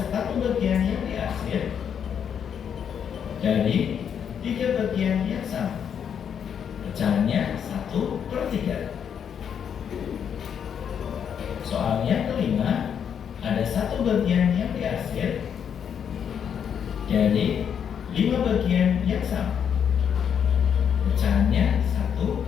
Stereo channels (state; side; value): quieter; right; 8.0 dB